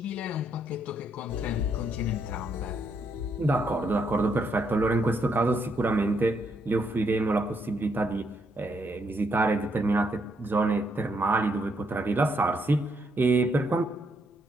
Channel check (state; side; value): normal; both; correlation 0.75